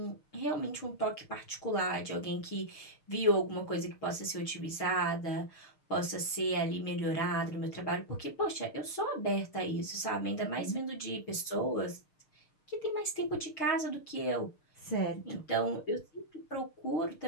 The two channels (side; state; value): right; late; 6.6 ms